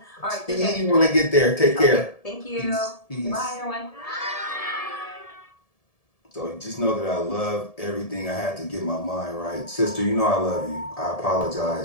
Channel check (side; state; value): right; late; 1.7 ms